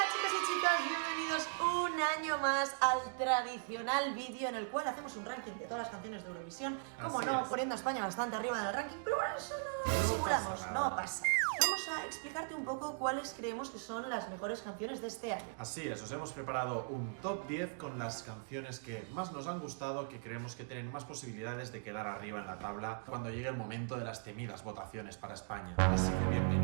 chicos y chicas, bienvenidos un año más al tradicional vídeo en el cual hacemos un ranking de todas las canciones de Eurovisión. Como no, poniendo a España bastante arriba en el ranking, pero bueno, eso no simulamos, no pasa. Vamos a explicarte un poco cuáles creemos que son las mejores canciones de este año. Así es, os hemos preparado un top 10 con las canciones que más nos han gustado, que creemos que tienen más posibilidades de quedar arriba en la tabla cuando llegue el momento de las temidas votaciones para España. Así que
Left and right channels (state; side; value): silent; left; digital silence